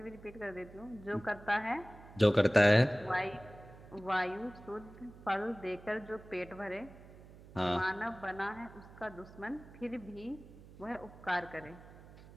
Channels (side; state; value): right; noise; hum, 19 dB below the sound